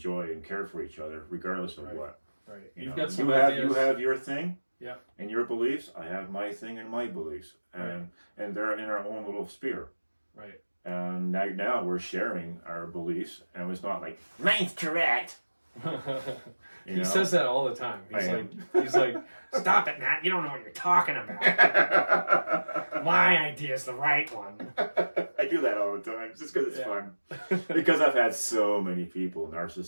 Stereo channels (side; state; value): both; inverted; correlation -1.00